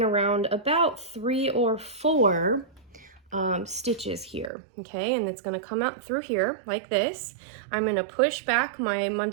around about 3 or 4 stitches here, okay, and it's going to come out through here like this. I'm going to push back my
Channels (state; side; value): drops out; left; at 4.5 s